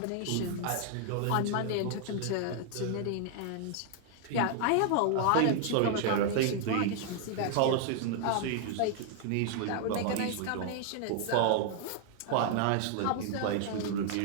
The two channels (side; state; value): both; different; correlation 0.00